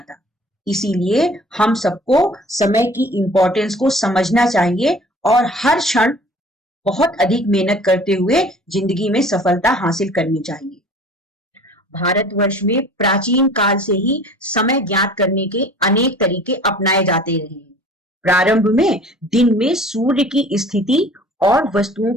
इसीलिए हम सबको समय की इम्पोर्टेंस को समझना चाहिए और हर क्षण बहुत अधिक मेहनत करते हुए जिंदगी में सफलता हासिल करनी चाहिए। भारतवर्ष में प्राचीन काल से ही समय ज्ञात करने के अनेक तरीके अपनाए जाते रहे हैं। प्रारंभ में दिन में सूर्य की स्थिति और वस्तुओं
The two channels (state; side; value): normal; both; correlation 0.47